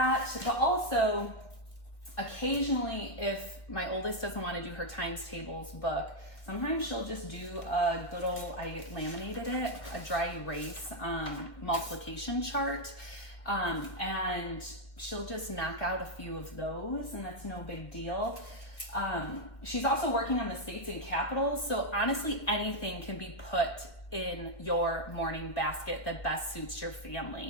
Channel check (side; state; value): right; late; 1.6 ms